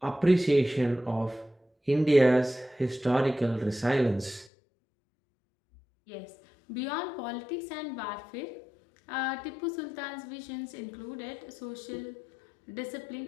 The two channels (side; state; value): right; drops out; at 4.5 s